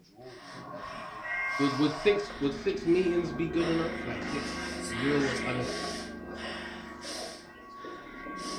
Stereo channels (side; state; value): both; identical; correlation 1.00